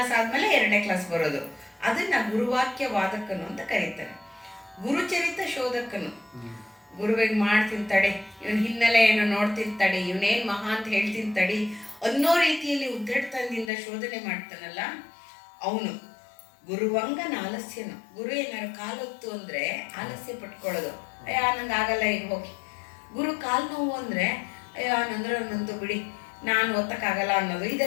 ಆದ್ಮೇಲೆ 2ನೇ ಕ್ಲಾಸ್ ಬರೋದು. ಅದನ್ನ ಗುರುವಾಕ್ಯ ವಾದಕನು ಅಂತ ಕರೀತಾರೆ. ಗುರುಚರಿತ ಶೋಧಕನು. ಗುರುವಿಗೆ ಮಾಡ್ತೀನಿ ತಡೆ, ಇವನ್ ಹಿನ್ನೆಲೆ ಏನೋ ನೋಡ್ತೀನಿ ತಡಿ, ಇವನೇನ್ ಮಹಾ ಅಂತ ಹೇಳ್ತೀನಿ ತಡಿ ಅನ್ನೋ ರೀತಿಯಲ್ಲಿ ಉದ್ದಟತನದಿಂದ ಶೋಧನೆ ಮಾಡ್ತಾನಲ್ಲ ಅವನು. ಗುರುವಂಗನ ಆಲಸ್ಯನು. ಗುರು ಏನಾರು ಕಾಲೊತ್ತು ಅಂದ್ರೆ ಆಲಸ್ಯ ಪಟ್ಕೊಳ್ಳೋದು, ಅಯ್ಯ ನಂಗೆ ಆಗಲ್ಲ ಈಗ ಹೋಗಿ. ಗುರು ಕಾಲು ನೋವು ಅಂದ್ರೆ ಅಯ್ಯೋ ನಂದ್ರೆ ನಂದು ಬಿಡಿ ನಾನು ಒತ್ತಕ್ಕಾಗಲ್ಲ ಅನ್ನೋದು,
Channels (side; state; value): right; drops out; at 13.7 s